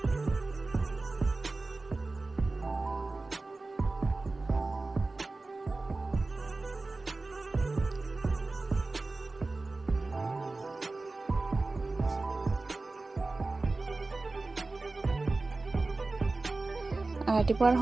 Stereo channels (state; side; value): quieter; left; 3.4 dB